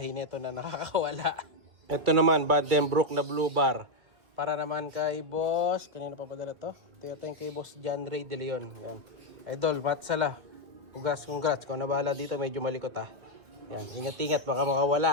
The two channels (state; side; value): late; left; 2.5 ms